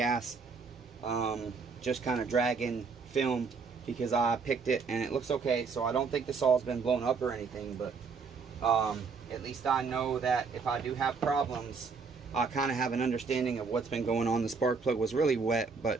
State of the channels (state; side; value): quieter; left; 5.1 dB